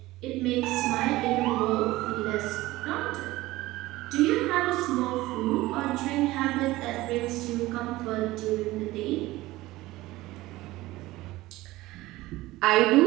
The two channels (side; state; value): left; quieter; 18.2 dB